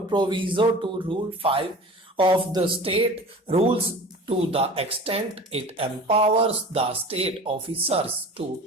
proviso to Rule 5 of the state rules to the extent it empowers the state officers to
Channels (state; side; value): normal; both; correlation 0.39